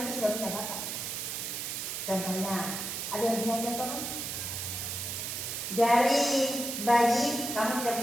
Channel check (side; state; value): right; noise; hiss, 4 dB below the sound